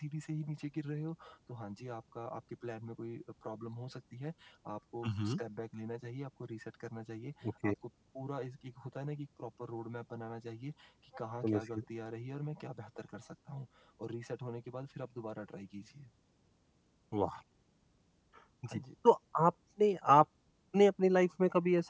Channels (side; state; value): both; identical; correlation 1.00